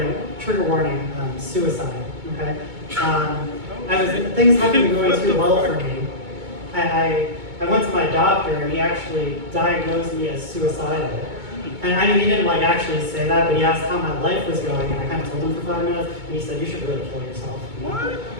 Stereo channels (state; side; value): late; left; 2.2 ms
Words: suicide, okay? Things haven't been going too well for me. I went to my doctor and he actually diagnosed me as suicidal. And I mean, he didn't like actually say that, but he asked how my life was going, and I kind of told him for 5 minutes, and he said, "You should really kill yourself." What?